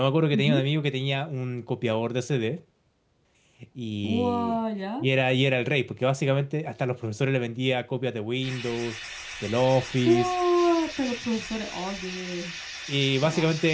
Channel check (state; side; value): identical; both; correlation 1.00